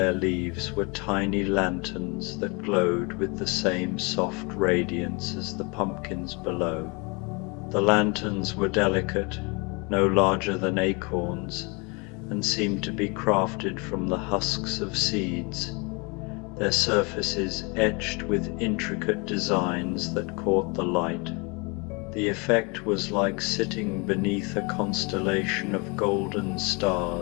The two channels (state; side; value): quieter; right; 30.0 dB